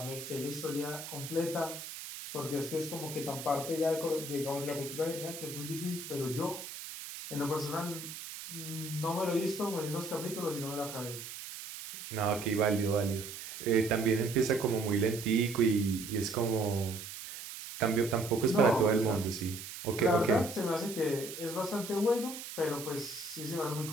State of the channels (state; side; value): noise; right; hiss, 10 dB below the sound